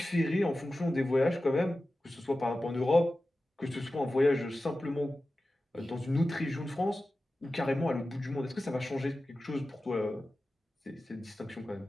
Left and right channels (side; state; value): both; normal; correlation 0.94